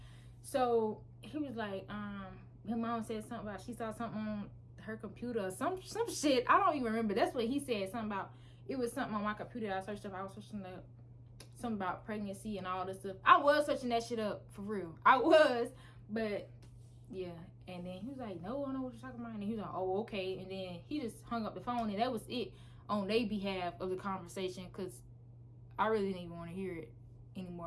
So he was like, her mom said something about she saw something on her computer or some shit. I don't even remember. That's what he said. Something about, it was something on my computer that I searched up. I was searching up something about pregnancy and all this stuff. I was searching that shit up, for real. I was. But Yeah. And then he was like, no, I don't know what you're talking about. And he was like, oh, okay. And then he just hung up the phone, and that was it on their behalf of the conversation, because I really didn't even want to hear it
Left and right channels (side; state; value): both; identical; correlation 1.00